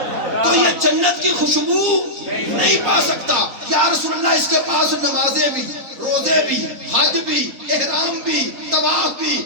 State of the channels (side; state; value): left; late; 3.9 ms